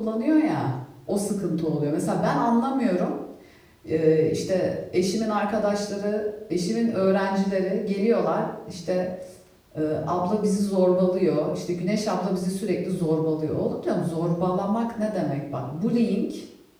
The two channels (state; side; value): identical; both; correlation 1.00